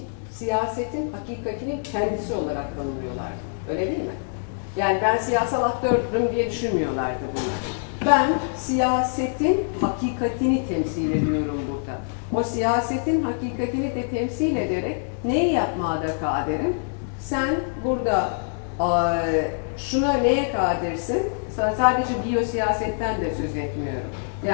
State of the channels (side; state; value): right; silent; digital silence